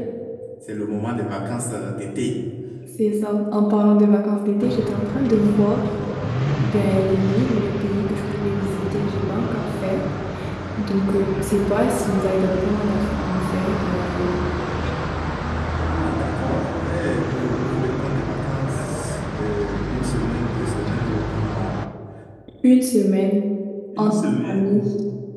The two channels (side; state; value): both; identical; correlation 1.00